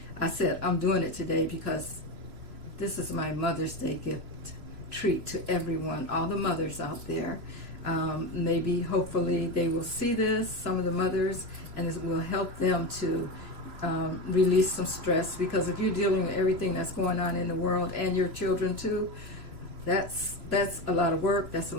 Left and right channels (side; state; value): left; late; 3.0 ms